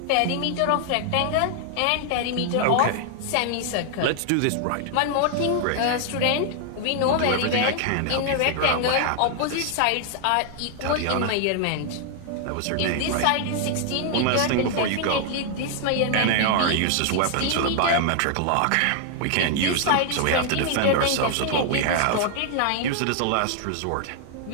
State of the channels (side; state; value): both; different; correlation 0.00